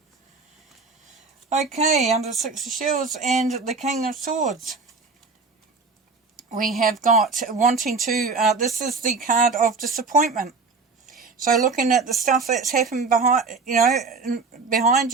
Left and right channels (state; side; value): quieter; left; 4.4 dB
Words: Okay, under Six of Shields and the King of Swords, we have got wanting to, this is the card of disappointment. So looking at the stuff that's happened behind